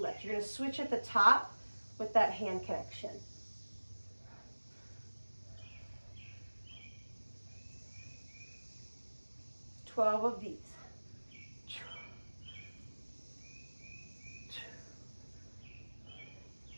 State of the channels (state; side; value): inverted; both; correlation -1.00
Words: You're gonna switch at the top with that hand connection. Twelve of these.